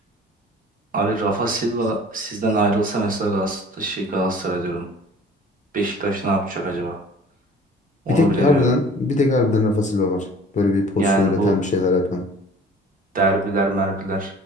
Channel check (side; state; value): both; normal; correlation 0.48